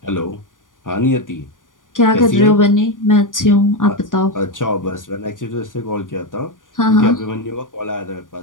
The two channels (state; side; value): late; right; 0.88 ms